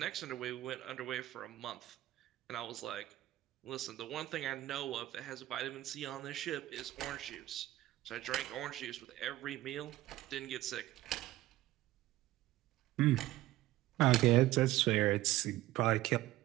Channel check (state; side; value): quieter; left; 15.8 dB